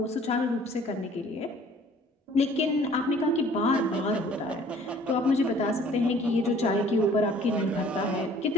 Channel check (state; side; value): normal; both; correlation 0.54